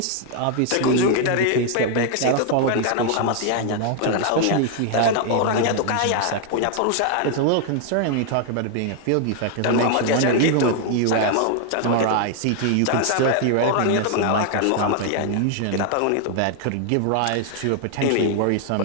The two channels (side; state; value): both; different; correlation 0.00